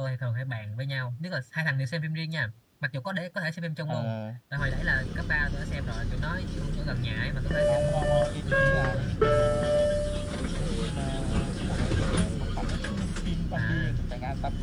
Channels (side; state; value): both; identical; correlation 1.00